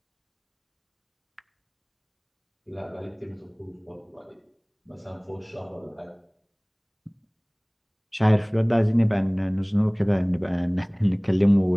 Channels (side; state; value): both; identical; correlation 1.00